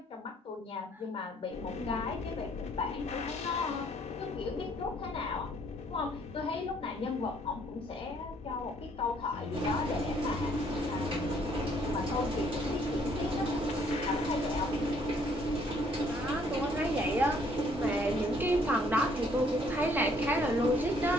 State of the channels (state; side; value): normal; both; correlation 0.64